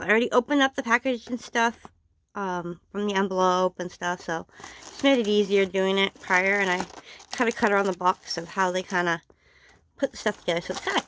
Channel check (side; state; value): both; identical; correlation 1.00